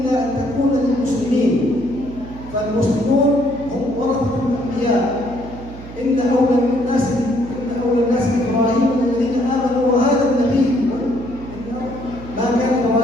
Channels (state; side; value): noise; right; hum, 14 dB below the sound